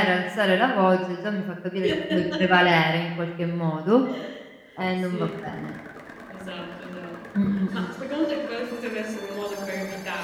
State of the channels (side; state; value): both; identical; correlation 1.00